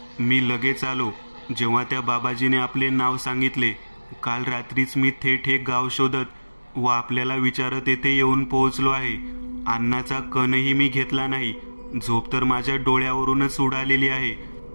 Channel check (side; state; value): both; inverted; correlation -1.00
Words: मी लगेच आलो जेव्हा त्या बाबाजीने आपले नाव सांगितले. काल रात्रीच मी थेट हे गाव शोधत व आपल्याला विचारत येथे येऊन पोहोचलो आहे. अन्नाचा कणही मी घेतला नाही. झोप तर माझ्या डोळ्यावरूनच उडालेली आहे.